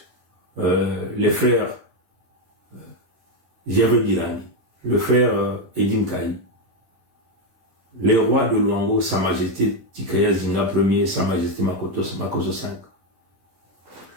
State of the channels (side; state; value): left; late; 11 ms